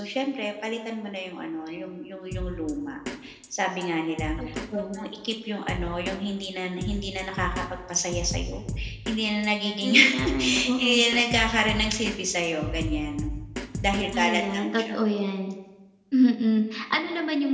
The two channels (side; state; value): both; identical; correlation 1.00